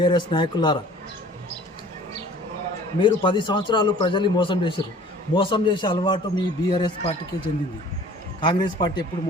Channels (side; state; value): both; normal; correlation 0.49